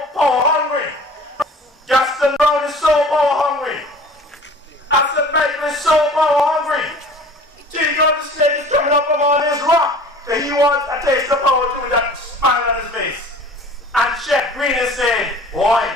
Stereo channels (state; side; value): normal; both; correlation 0.46